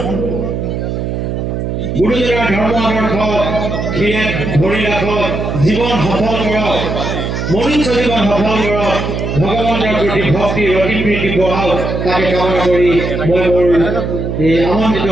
গুৰুজনাৰ ধৰ্ম আদৰ্শ ধৰি ৰাখক, জীৱন সফল কৰক, মনুষ্য জীৱন সফল কৰক, ভগৱানৰ প্ৰতি ভক্তি অতি প্ৰীতি বঢ়াওক, তাকে কামনা কৰি মই মোৰ এই আমন্ত্ৰিত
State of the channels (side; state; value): right; noise; hum, 3 dB below the sound